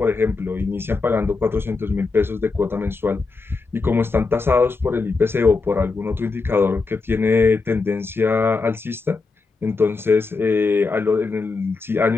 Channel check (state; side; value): quieter; right; 4.1 dB